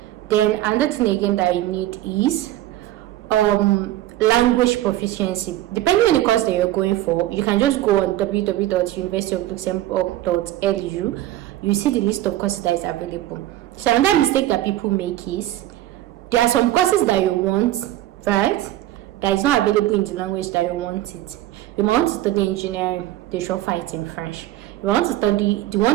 Then another thing again that you need is language proficiency. Depending on the course that you're going for, you can just go on www.universityofluxembourg.lu. You see the list of courses that is available. So another mistake that people make is, there are some courses that you want, right, that is not available in the language that you want it. You want to study engineering, they should offer it in French. You want to study the one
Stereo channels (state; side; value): quieter; left; 14.5 dB